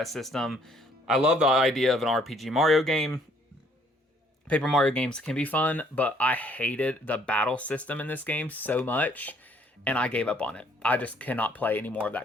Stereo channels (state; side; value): normal; both; correlation 0.63